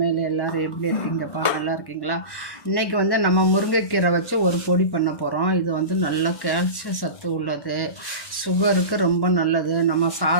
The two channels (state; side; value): late; right; 1.1 ms